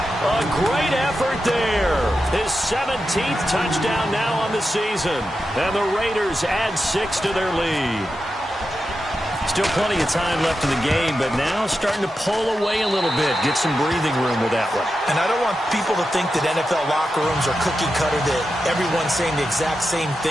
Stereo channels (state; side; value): normal; both; correlation 0.89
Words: A great effort there. His 17th touchdown now on the season. And the Raiders add 6 to their lead. Still plenty of time left in the game, but now starting to pull away a little bit. Get some breathing room with that one. And I don't want people to think that NFL locker rooms are cookie cutter, that everyone's saying the exact same